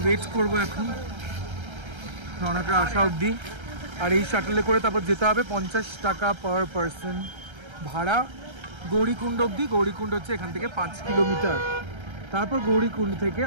ওয়েট করবো এখন রনকরা আসা অবধি। আর এই শাটলে করে তারপর যেতে হবে 50 টাকা পার পারসন ভাড়া গৌরীকুণ্ড অবধি। গৌরীকুণ্ড হচ্ছে এখান থেকে 5 কিলোমিটার। তারপর গৌরীকুণ্ড থেকে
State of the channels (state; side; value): late; left; 1.3 ms